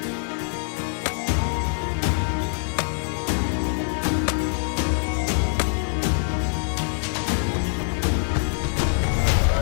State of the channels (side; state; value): right; silent; 61 dB below the other